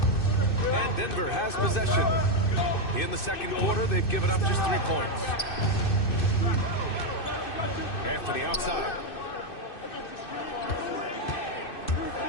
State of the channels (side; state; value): right; late; 2.6 ms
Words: And Denver has possession. In the second quarter, they've given up just 3 points. Anthony outside.